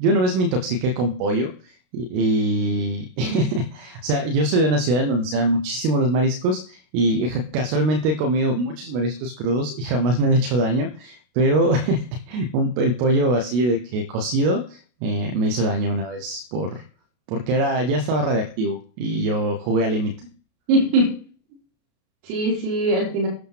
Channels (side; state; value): left; late; 33 ms